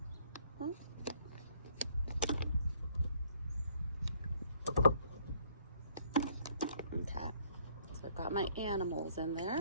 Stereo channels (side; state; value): both; inverted; correlation -0.64